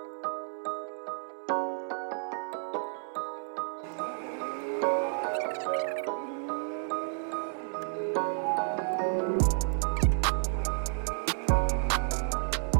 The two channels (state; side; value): silent; left; 57 dB below the other